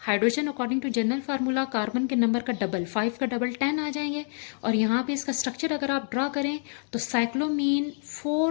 according to general formula carbon के नंबर का डबल, 5 का डबल 10 आ जाएंगे। और यहाँ पे इसका स्ट्रक्चर अगर आप ड्रा करें तो साइक्लोमीन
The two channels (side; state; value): right; silent; 60 dB below the other